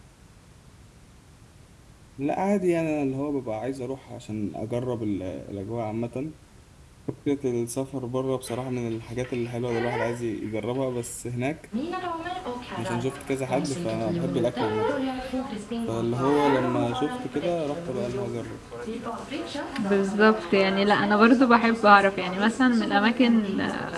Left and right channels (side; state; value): both; identical; correlation 1.00